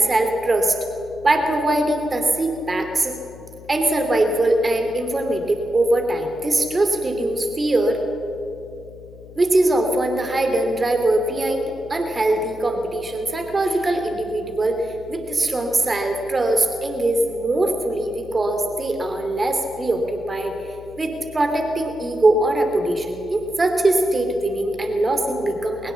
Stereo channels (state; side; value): noise; left; hum, 19 dB below the sound